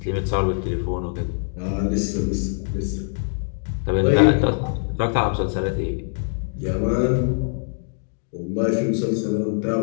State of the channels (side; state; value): right; silent; digital silence